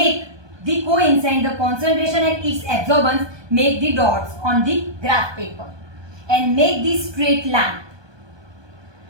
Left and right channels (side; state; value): left; late; 1.2 ms